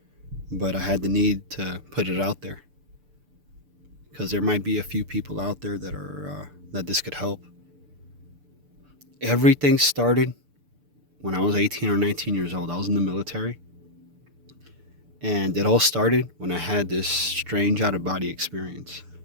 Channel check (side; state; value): left; late; 6.8 ms